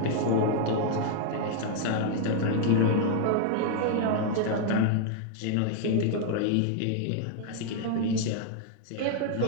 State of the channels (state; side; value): different; both; correlation 0.00